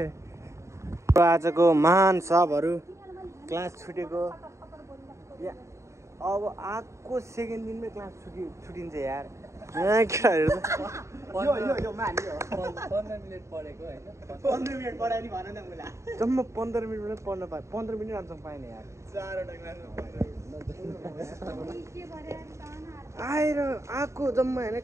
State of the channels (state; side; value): late; left; 0.14 ms